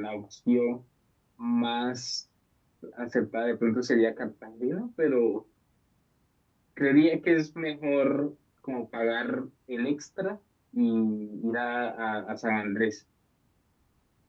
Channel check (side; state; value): both; identical; correlation 1.00